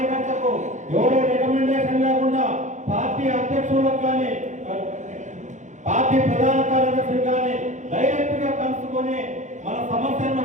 ఎవరో రికమెండేషన్ లేకుండా పార్టీ అధ్యక్షులకు కానీ పార్టీ ప్రధాన కార్యదర్శులు కానీ డైరెక్ట్ గా కలుసుకొని మన సమస్యలను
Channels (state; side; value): late; left; 0.35 ms